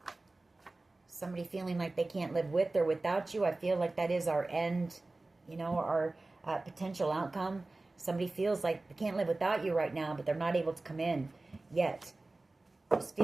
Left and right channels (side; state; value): left; quieter; 3.1 dB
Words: Somebody feeling like they can't live with or without you. I feel like that is our end, you know, our potential outcome. Somebody feels like they can't live without you right now, but they're not able to come in yet. Just